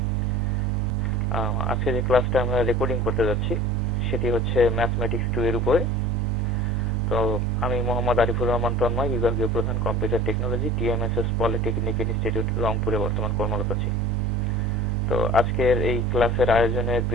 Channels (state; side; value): normal; both; correlation 0.42